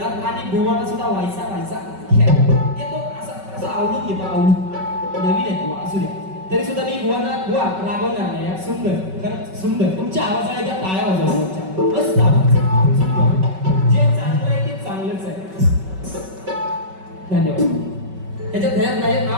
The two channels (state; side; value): late; left; 5.3 ms